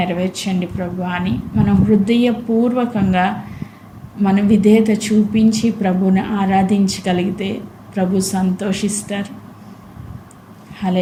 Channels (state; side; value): identical; both; correlation 1.00